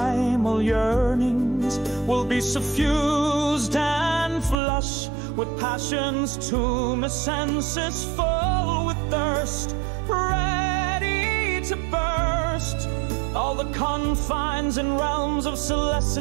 yearnings, we'll be suffused and flush with passion's tumescences, full with thirst, ready to burst all the confines and realms of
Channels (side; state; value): left; drops out; at 4.5 s